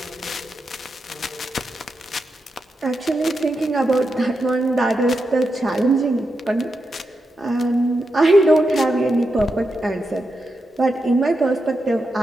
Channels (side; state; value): both; normal; correlation 0.87